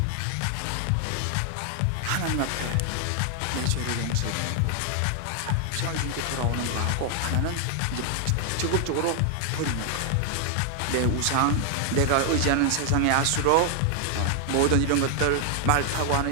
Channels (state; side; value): different; both; correlation 0.00